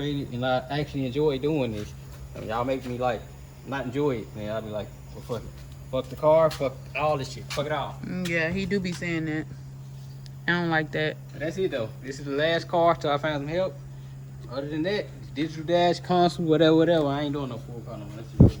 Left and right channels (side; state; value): both; identical; correlation 1.00